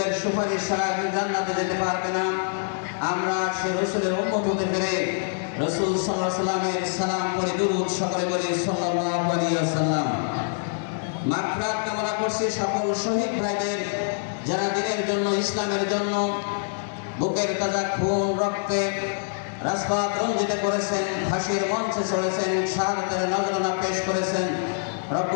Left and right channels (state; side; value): silent; right; digital silence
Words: সুপারিশ ছাড়া জান্নাতে যেতে পারবে না, আমরা সেই রাসূলের উম্মত হতে পেরে রাসূল সাল্লাল্লাহু আলাইহি ওয়াসাল্লামের সালাম পড়ে দুরূদ সকলে বলি সাল্লাল্লাহু আলাইহি ওয়াসাল্লাম। মাগফিরাত কামনা করছি সকল শহীদ ভাইদের, যারা দিনের জন্য, ইসলামের জন্য বুকের তাজা খুন রক্তে রাজপথ রঞ্জিত করেছেন, ফাঁসির মঞ্চে চড়েছেন, শাহাদাতের নজরানা পেশ করেছেন।